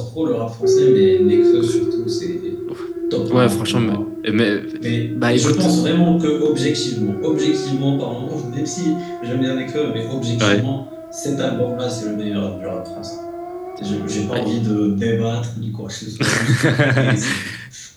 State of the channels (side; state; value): both; identical; correlation 1.00